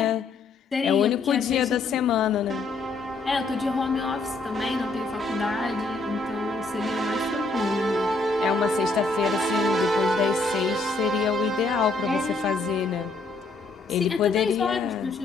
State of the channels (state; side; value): quieter; right; 3.6 dB